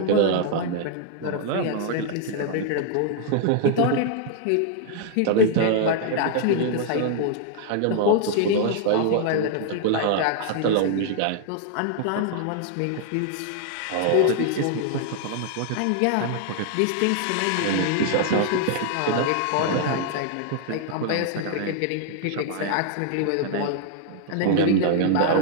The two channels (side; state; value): both; different; correlation 0.00